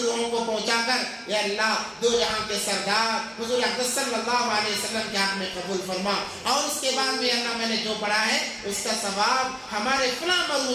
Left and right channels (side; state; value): both; identical; correlation 1.00